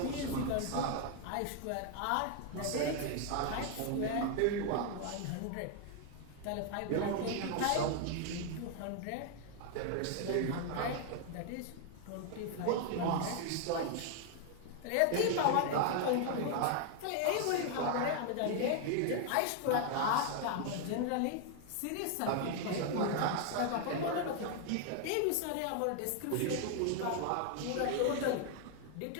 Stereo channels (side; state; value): both; different; correlation 0.00